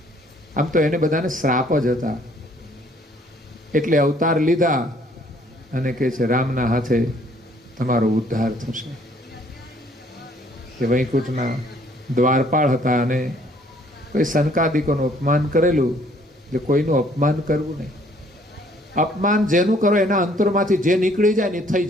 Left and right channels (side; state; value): both; normal; correlation 0.61